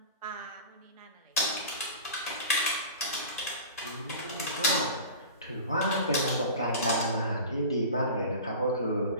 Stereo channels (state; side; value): inverted; both; correlation -0.36